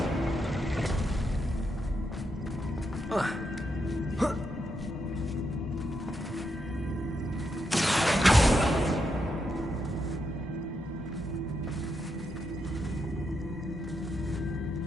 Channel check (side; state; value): both; normal; correlation 0.82